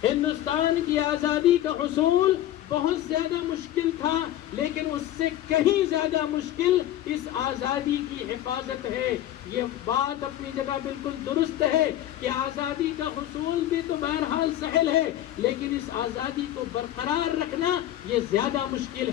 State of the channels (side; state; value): right; quieter; 12.9 dB